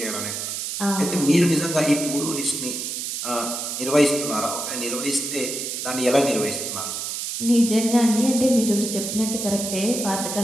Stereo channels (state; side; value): noise; right; hiss, 4 dB below the sound